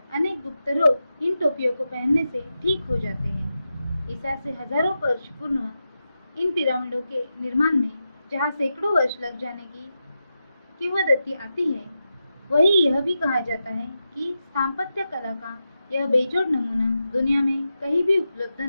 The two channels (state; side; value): inverted; both; correlation -0.89